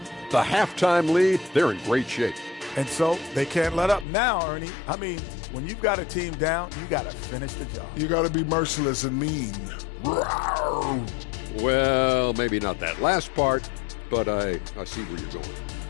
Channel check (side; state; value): right; drops out; at 4.0 s